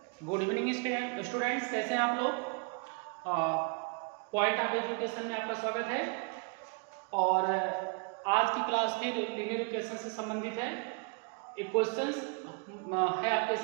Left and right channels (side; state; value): left; quieter; 34.5 dB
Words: Good evening students, कैसे हैं आप लोग। पॉइंट ऑफ एजुकेशन में आपका स्वागत है। और आज की क्लास फिर लीनियर इक्वेशन से संबंधित है। एक क्वेश्चन है आपके